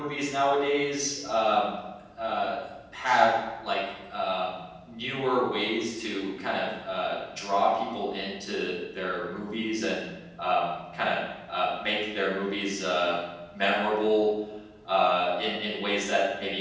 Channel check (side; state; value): both; identical; correlation 1.00